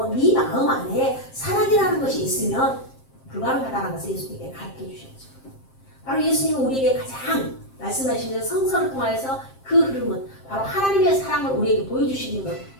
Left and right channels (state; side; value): late; right; 7.6 ms